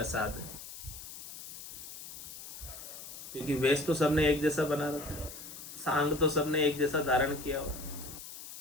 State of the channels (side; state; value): left; noise; hiss, 12 dB below the sound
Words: है? क्योंकि वेश तो सबने एक जैसा बना रखा है, सांग तो सबने एक जैसा धारण किया हो,